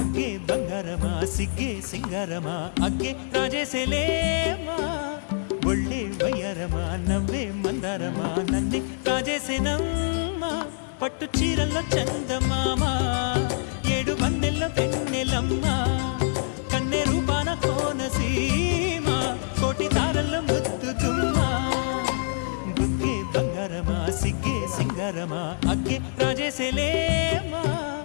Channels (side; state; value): right; silent; digital silence